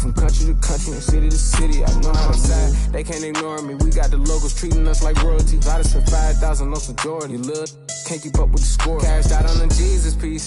country to country and city to city. I know how to side. They can't ignore me. We got the locals treating us like royalty. I just spent 5,000 on some Jordan. You little can't keep up with the score. Cashed out on the Jesus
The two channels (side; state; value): both; identical; correlation 1.00